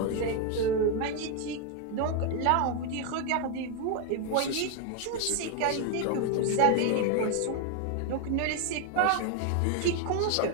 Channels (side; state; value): both; different; correlation 0.01